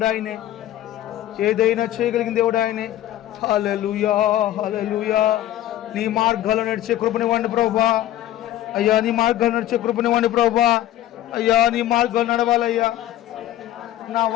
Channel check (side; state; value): right; quieter; 13.3 dB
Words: ఆయనే, ఏదైనా చేయగలిగిన దేవుడు ఆయనే. హల్లెలూయా, హల్లెలూయా. నీ మార్గాల్లో నడిచే కృపనివ్వండి ప్రభువా. అయ్యా నీ మార్గాల్లో నడిచే కృపనివ్వండి ప్రభువా. అయ్యా నీ మార్గాలు నడవాలయ్యా. నా